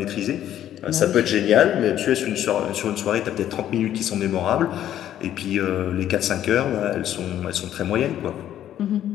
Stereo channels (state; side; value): quieter; right; 11.4 dB